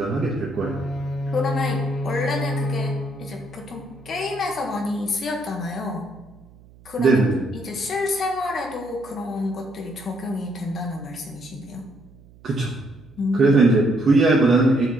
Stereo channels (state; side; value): noise; right; hum, 24 dB below the sound